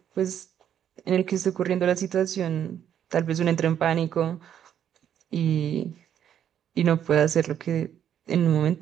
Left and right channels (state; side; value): quieter; left; 9.6 dB